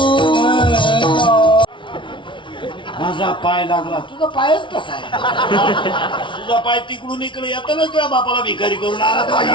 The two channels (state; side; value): late; right; 0.24 ms